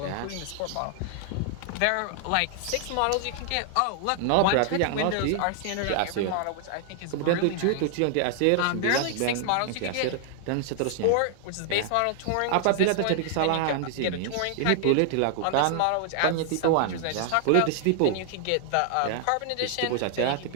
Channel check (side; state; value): both; different; correlation 0.00